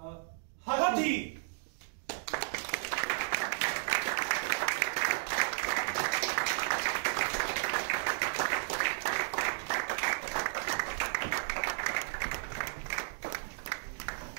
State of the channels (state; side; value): silent; left; digital silence